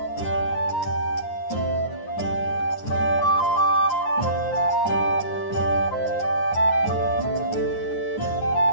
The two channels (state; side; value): late; right; 9.6 ms